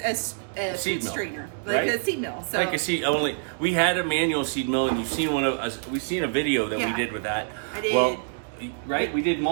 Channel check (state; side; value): silent; left; digital silence